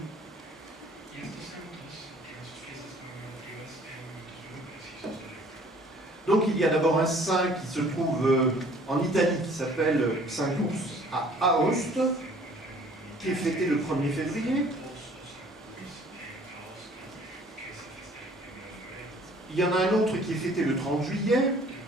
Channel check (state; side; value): normal; both; correlation 0.54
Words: Donc il y a d'abord un saint qui se trouve en Italie, qui s'appelle Saint Ours à Aoste, qui est fêté le 1er février. Il y en a un autre qui est fêté le 30 juillet,